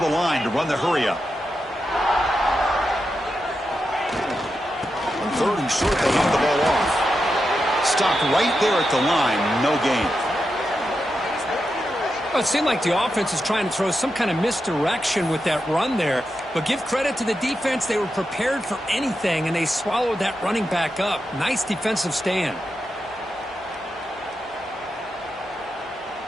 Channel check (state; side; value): normal; both; correlation 0.87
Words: line to run the hurry up. 3rd and short, they hand the ball off. Stopped right there at the line, no gain. Well, it seemed like the offense is trying to throw some kind of misdirection with that run there. But give credit to the defense. They were prepared for anything, and they swallowed that running back up. Nice defensive stand.